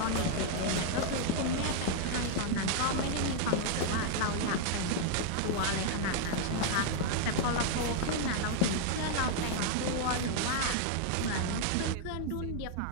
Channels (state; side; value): different; both; correlation 0.00